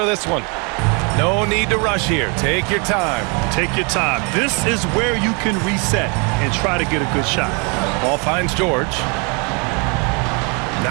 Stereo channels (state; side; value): quieter; left; 33.3 dB